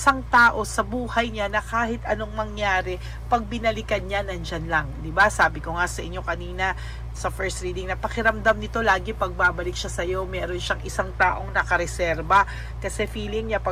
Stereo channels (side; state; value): both; identical; correlation 1.00